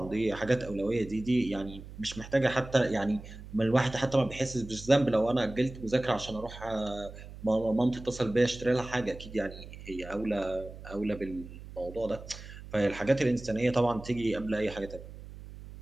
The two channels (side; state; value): right; noise; hum, 14 dB below the sound